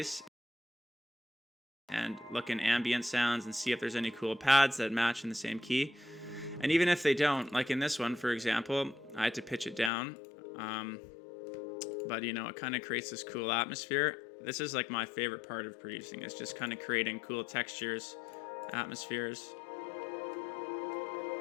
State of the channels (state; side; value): drops out; right; at 9.9 s